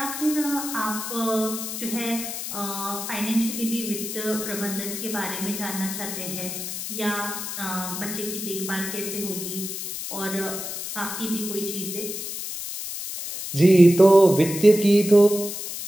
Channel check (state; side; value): noise; left; hiss, 6 dB below the sound